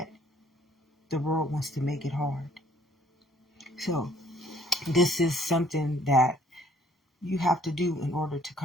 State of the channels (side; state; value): both; normal; correlation 0.60